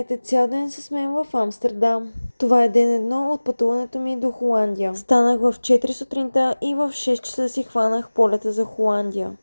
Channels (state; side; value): inverted; both; correlation -1.00